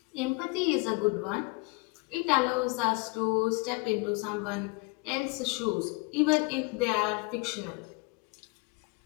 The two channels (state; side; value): quieter; right; 28.1 dB